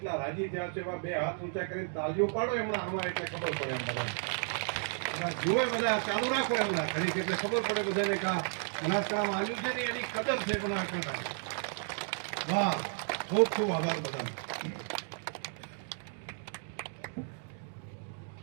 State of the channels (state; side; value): silent; left; 56 dB below the other